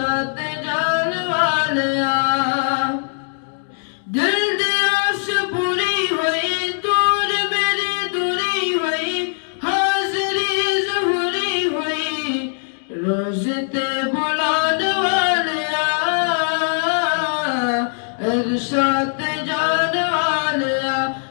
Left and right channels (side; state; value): right; silent; digital silence